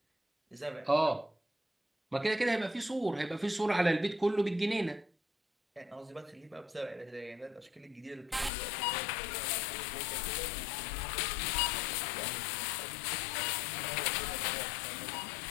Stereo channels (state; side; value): drops out; right; at 8.5 s